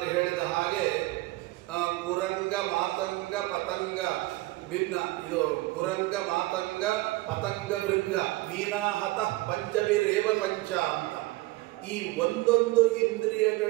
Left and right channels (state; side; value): quieter; left; 20.0 dB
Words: ಹೇಳಿದ ಹಾಗೆ, ಕುರಂಗ ಮಾತಂಗ ಪತಂಗ ಭಿನ್ನ, ಇದು ಕುರಂಗ ಮಾತಂಗ ಪತಂಗ ಭೃಂಗ ಮೀನಾಹತ ಪಂಚಭಿರೇವ ಪಂಚ ಅಂತ. ಈ ಒಂದೊಂದು